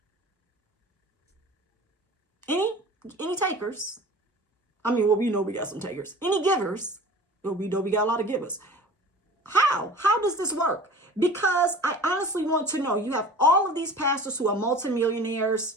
Any takers? I mean, well, we know we got some takers. Any givers? Well, we know we got a lot of givers. How does this work? Because I honestly want to know. You have all of these pastors who are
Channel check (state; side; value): normal; both; correlation 0.41